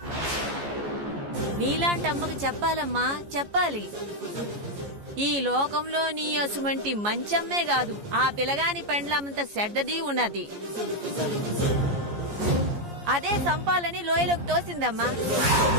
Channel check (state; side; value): late; left; 14 ms